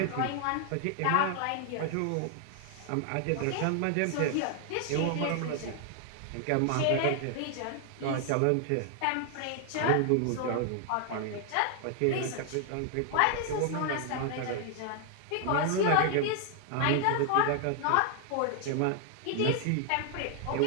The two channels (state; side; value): different; both; correlation 0.00